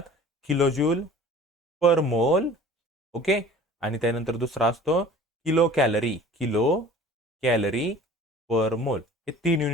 किलो जूल पर मोल. ओके, आणि त्यानंतर दुसरा असतो किलो कॅलरी पर मोल. हे 3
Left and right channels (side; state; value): both; normal; correlation 0.45